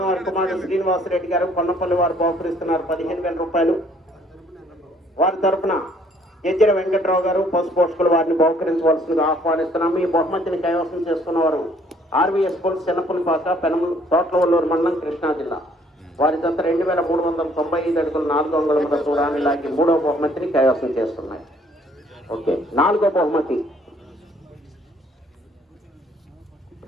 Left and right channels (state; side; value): normal; both; correlation 0.62